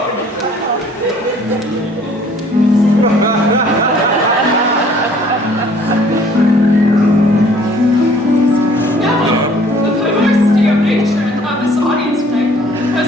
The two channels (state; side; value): normal; both; correlation 0.56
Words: The perversity of nature and of this audience tonight has